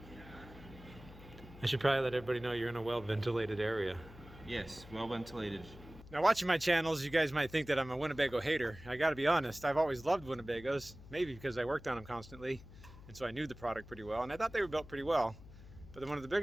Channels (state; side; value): noise; left; hum, 18 dB below the sound